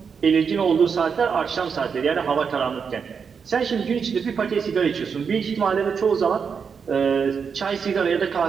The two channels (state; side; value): quieter; left; 6.2 dB